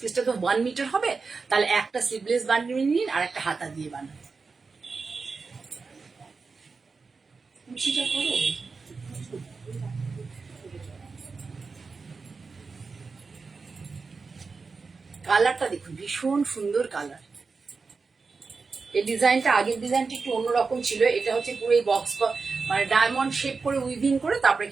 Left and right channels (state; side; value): quieter; left; 4.6 dB